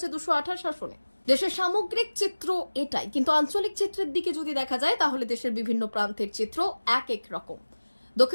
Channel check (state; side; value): inverted; both; correlation -1.00